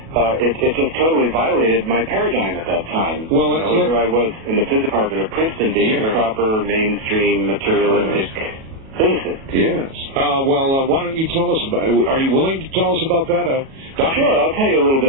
it just totally violated my paradigm at that time. Well, here I was in the physics department of Princeton being a proper, mainstream, materialistic physicist. Yes. Why don't you tell us about it? Are you willing to tell us about that? Sure, I'll tell you a little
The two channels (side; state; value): left; late; 37 ms